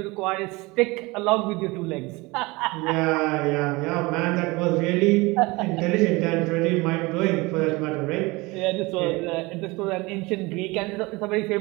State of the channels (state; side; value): quieter; left; 23.6 dB